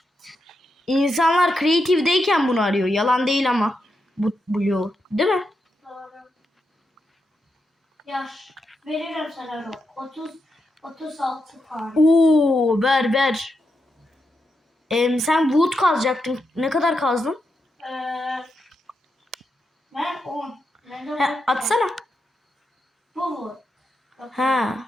İnsanlar creative'deyken bunu arıyor. Yalan değil ama. Bu Blue. Değil mi? Doğru. Yaş. Veririm sana Rob. 36 tane. Oo, ver. Sen wood kazacaktın. Ne kadar kazdın? Ben 10. Atsana. Bu. Ha.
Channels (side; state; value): both; normal; correlation 0.85